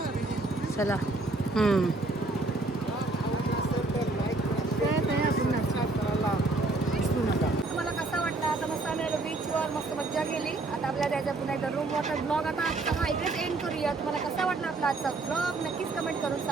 चला तुम्हाला कसा वाटला? आता मस्त आम्ही आलो बीचवर, मस्त मज्जा केली. आता आपल्याला जायचं पुन्हा एकदा रूम वॉटर ब्लॉग. आता आजचा हा इकडेच एंड करूया. तुम्हाला कसा वाटला आपला आजचा ब्लॉग नक्कीच कमेंट करून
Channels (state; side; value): quieter; left; 3.2 dB